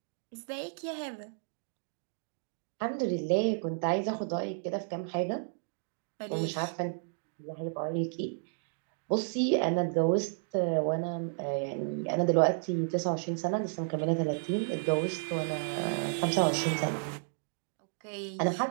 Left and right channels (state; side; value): silent; left; digital silence